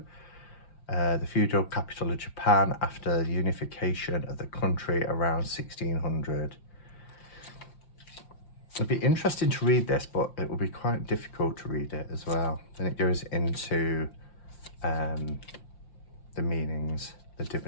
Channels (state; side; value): late; right; 5.7 ms